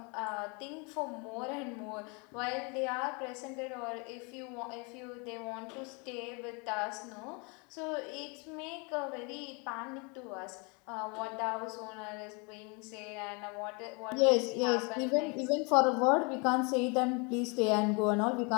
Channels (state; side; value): quieter; right; 32.1 dB